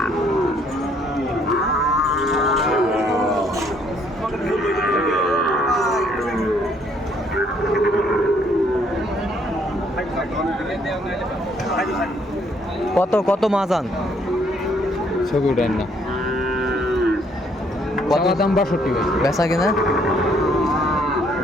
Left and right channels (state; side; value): normal; both; correlation 0.66